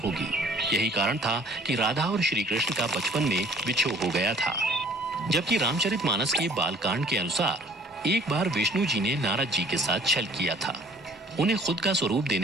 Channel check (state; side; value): normal; both; correlation 0.54